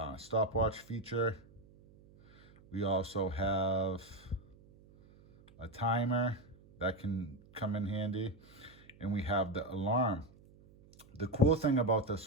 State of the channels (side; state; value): right; noise; hum, 25 dB below the sound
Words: stopwatch feature. We also have a timer that can come in handy. And we have the alarm. The cool thing about